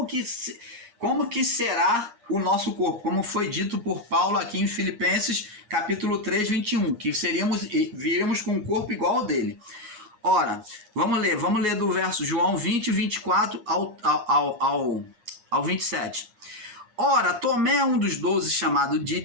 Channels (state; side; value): late; left; 8.5 ms